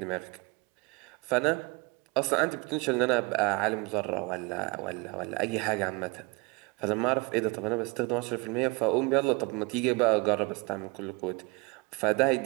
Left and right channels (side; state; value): left; quieter; 26.9 dB